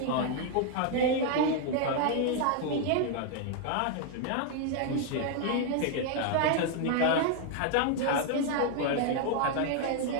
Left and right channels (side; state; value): both; different; correlation 0.00